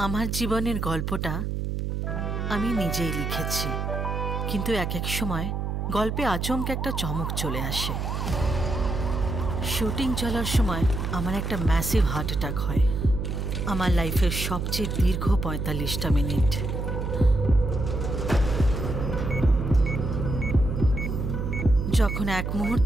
জীবনের গল্পটা আমি নিজেই লিখেছি, কিন্তু এক এক সময় গল্পে আচমকা একটা চমক চলে আসে। শুটিং চলার সময় আমার একটা ম্যাসিভ হার্ট অ্যাটাক হয়। আমার লাইফের সবচেয়ে দীর্ঘ ৪৫টা মিনিট। যখন এক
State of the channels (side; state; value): right; noise; hum, 2 dB below the sound